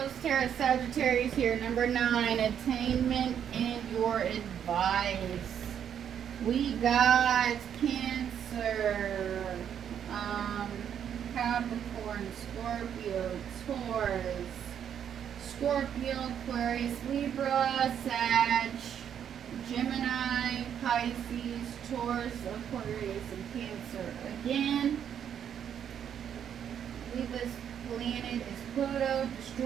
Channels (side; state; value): left; quieter; 8.8 dB